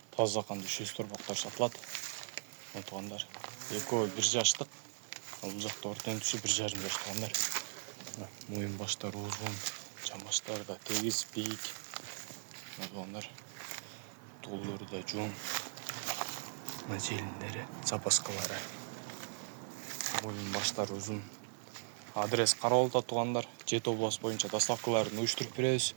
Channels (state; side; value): silent; left; digital silence